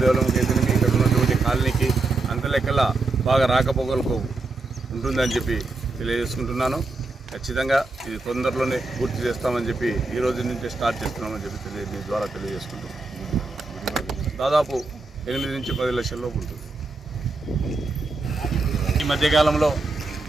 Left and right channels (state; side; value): quieter; left; 3.5 dB